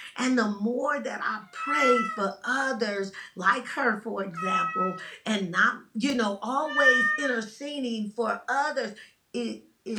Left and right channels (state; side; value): identical; both; correlation 1.00